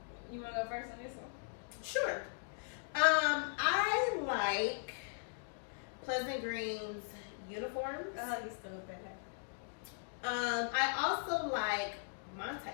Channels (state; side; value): silent; right; digital silence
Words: You want to go first on this one? Sure. I like Pleasant Green's uniforms. Oh, you still bad. I also like Monte.